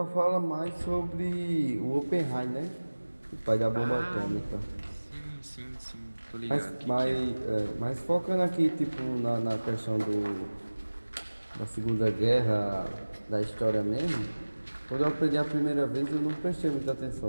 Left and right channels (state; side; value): inverted; both; correlation -1.00